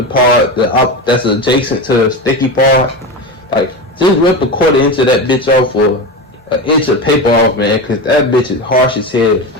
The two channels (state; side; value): normal; both; correlation 0.22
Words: part that's adjacent to the sticky part. Like, just rip a quarter inch of that bitch off, or an inch of paper off, man, cause that bitch is harsh as hell.